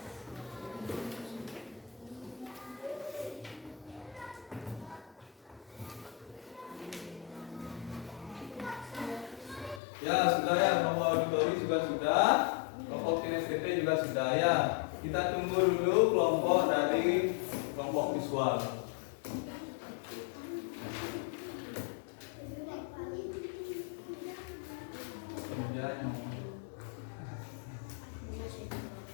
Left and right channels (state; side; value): drops out; right; at 9.8 s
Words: Ya, sudah ya, kelompok auditori juga sudah. Kelompok kinestetik juga sudah ya. Kita tunggu dulu kelompok dari kelompok visual.